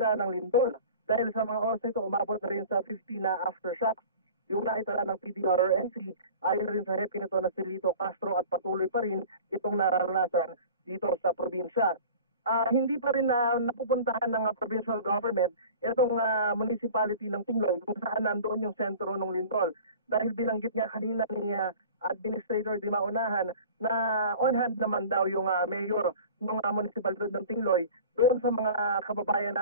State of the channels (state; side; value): inverted; both; correlation -0.41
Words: ng lindol. Dahil sa mga oras nito, umabot na rin sa 50 na aftershocks. Yung naitala ng PDRRNC, ayon rin sa hepe nito na si Lito Castro at patuloy pa rin itong nararanasan dito sa probinsya. Hindi pa rin napupuntahan ng provincial government itong municipality ng Tingloy kung saan nandoon yung sentro ng lindol. Dahil binanggit nga kanina ni Administrator Di Maunahan na on hand naman daw yung mayor ng municipality ng Tingloy doon sa mga kababayan